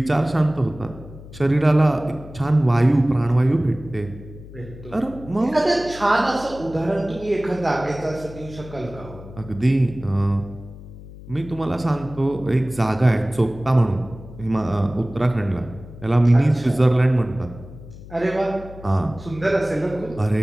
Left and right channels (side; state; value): left; noise; hum, 16 dB below the sound